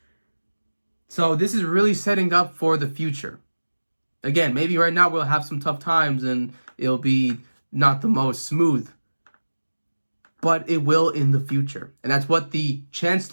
So this is really setting up for the future. Again, maybe right now we'll have some tough times and it'll be not the most smooth, but it will in the future. And that's what the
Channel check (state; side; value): inverted; both; correlation -1.00